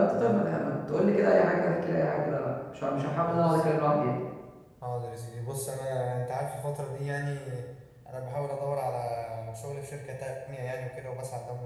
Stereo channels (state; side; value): identical; both; correlation 1.00